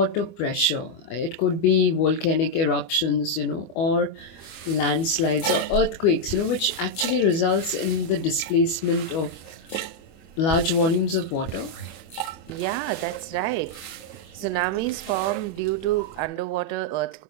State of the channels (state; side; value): late; right; 25 ms